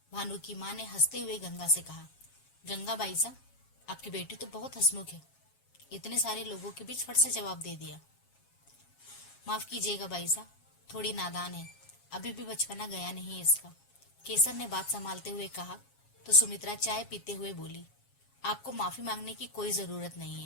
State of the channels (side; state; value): right; late; 7.3 ms